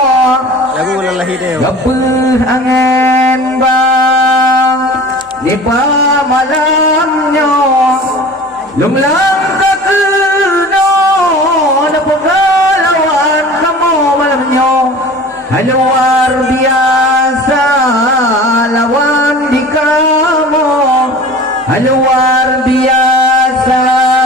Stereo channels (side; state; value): both; normal; correlation 0.41